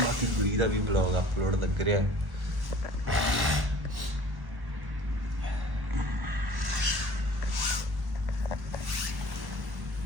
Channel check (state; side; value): late; left; 1.1 ms